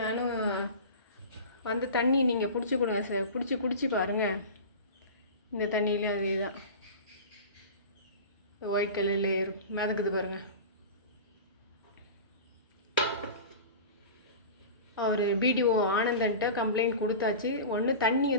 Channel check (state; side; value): inverted; both; correlation -0.32